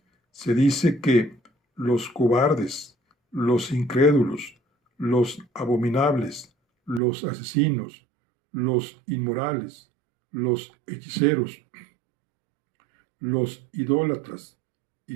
se dice que los cobardes, los incrédulos, los abominables, los asesinos, los inmorales, los hechiceros, los idólatras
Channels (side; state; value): left; drops out; at 7.0 s